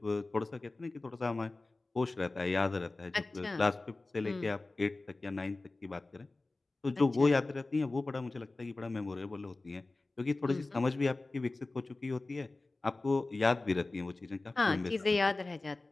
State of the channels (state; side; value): quieter; right; 3.2 dB